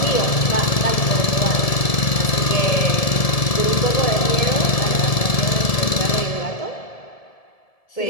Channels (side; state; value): right; late; 1.7 ms